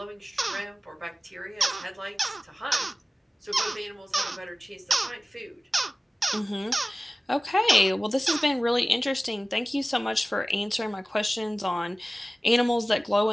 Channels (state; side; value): normal; both; correlation 0.97